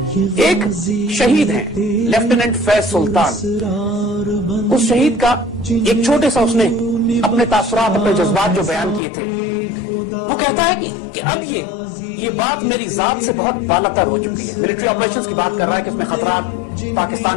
ایک شہید ہیں لیفٹیننٹ فیض سلطان، اس شہید کا ایک چھوٹے سا اس نے اپنے تاثرات اپنے جذبات جو بیان کیے تھے، وہ کہتا ہے کہ اب یہ بات میری ذات سے بہت بالاتر ہو چکی ہے۔ ملٹری آپریشنز کی بات کر رہا ہے کہ اس میں خطرات،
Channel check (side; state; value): right; drops out; at 9.0 s